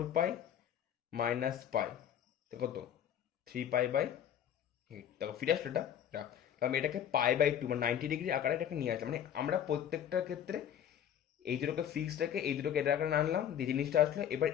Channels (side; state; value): right; quieter; 9.7 dB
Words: মাইনাস পাই, তো কত? 3π/8। দেখো ফিরে আসলো এটা। তো আমি এটাকে π/2 মানে 90 ডিগ্রি আকারে এটাকে নিয়ে আসলাম। মানে আমরা প্রত্যেকটার ক্ষেত্রে এই দুটোকে ফিক্সড রেখে এই দুটোকে এটা আকারে আনলাম, যে জিনিসটা আসলো। এবার